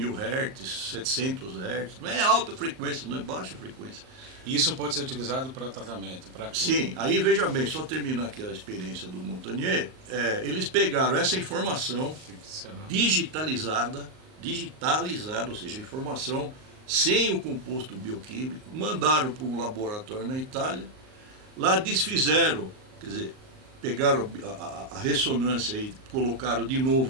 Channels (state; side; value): late; left; 38 ms